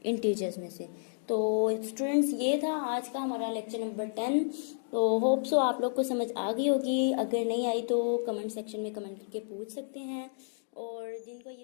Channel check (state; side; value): silent; right; digital silence